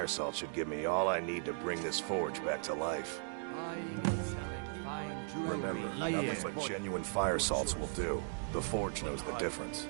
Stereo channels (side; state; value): left; silent; digital silence